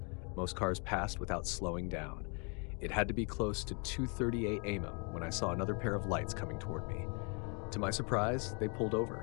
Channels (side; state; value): right; quieter; 36.0 dB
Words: Most cars passed without slowing down. It had to be close to 2:38 a.m. when I saw another pair of lights coming toward me. To my surprise, they pulled